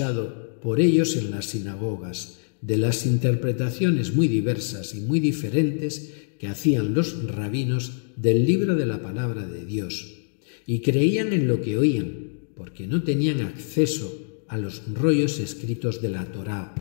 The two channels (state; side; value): silent; right; digital silence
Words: por ellos en las sinagogas, de las interpretaciones muy diversas y muy diferentes que hacían los rabinos del libro de la palabra de Dios, y creían en lo que oían, porque no tenían acceso a los rollos escritos de la Torá.